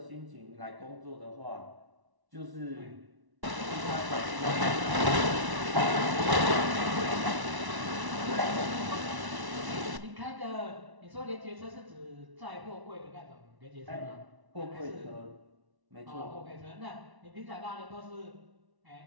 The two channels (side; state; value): left; late; 1.1 ms